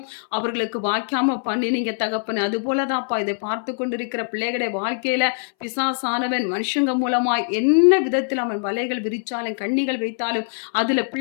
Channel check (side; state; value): right; silent; 62 dB below the other